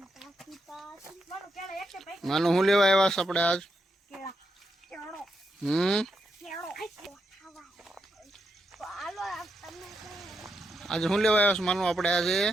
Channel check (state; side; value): normal; both; correlation 0.83